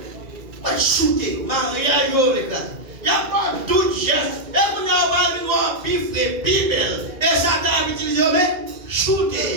Shooter, mariage, les gars. Il n'y a pas d'autre geste. Et vous n'avez pas une voix pifrée, bibel. Et ça t'a utilisé, mais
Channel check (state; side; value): late; left; 2.4 ms